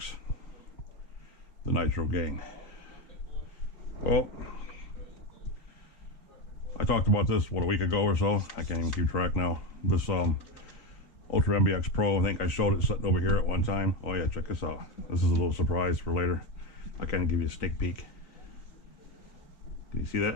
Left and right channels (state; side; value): late; right; 3.9 ms